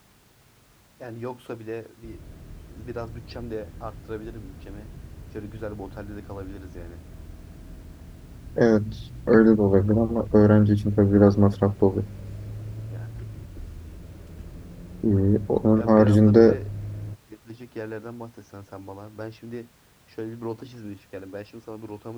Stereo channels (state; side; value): identical; both; correlation 1.00